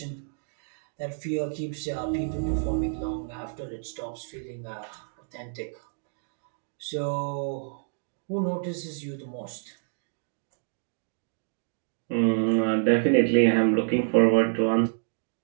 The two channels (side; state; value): left; silent; digital silence